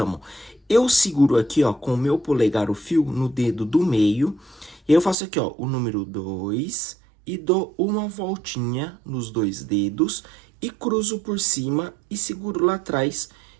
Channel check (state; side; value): drops out; left; at 5.2 s